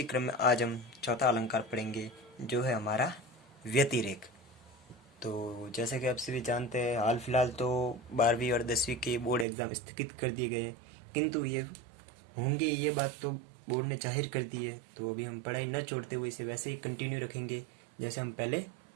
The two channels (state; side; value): drops out; left; at 9.5 s